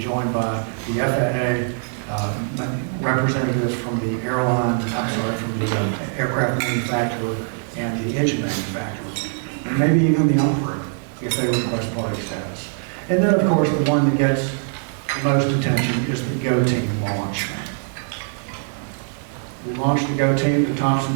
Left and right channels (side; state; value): left; silent; 63 dB below the other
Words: joined by the FAA, representatives from the from the aircraft manufacturer and the engine manufacturer, and maybe even the operator if they request party status. And then of course the one that gets the most attention is the GO team launch. We launched the GO team to